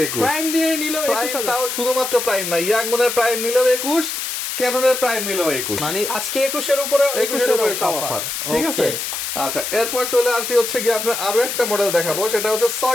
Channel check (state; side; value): noise; left; hiss, 4 dB below the sound